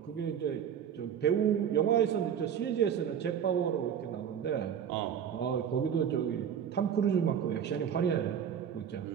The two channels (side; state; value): left; quieter; 8.5 dB